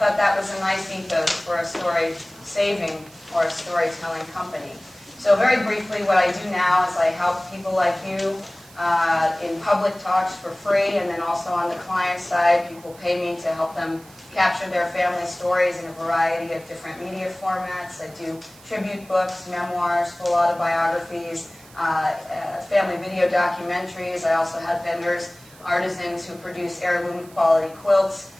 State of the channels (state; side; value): noise; right; hiss, 23 dB below the sound